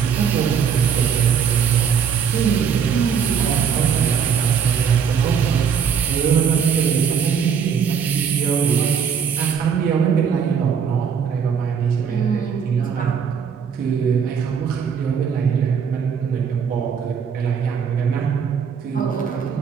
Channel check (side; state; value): left; quieter; 7.1 dB